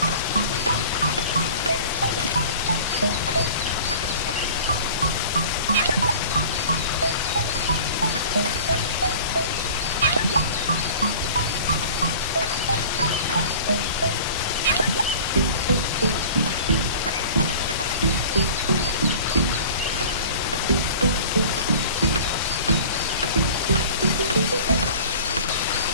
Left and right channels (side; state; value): both; inverted; correlation -0.43